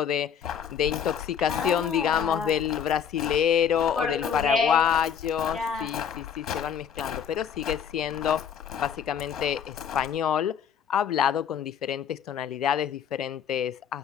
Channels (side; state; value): right; quieter; 8.0 dB